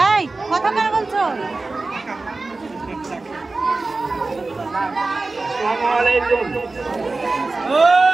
কথা কার বলছো আসসালামু আলাইকুম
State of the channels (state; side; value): quieter; left; 3.5 dB